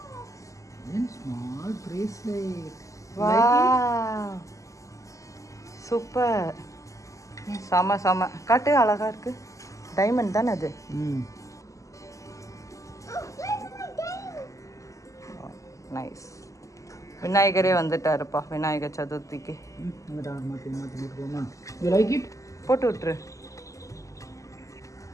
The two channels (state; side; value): late; right; 0.16 ms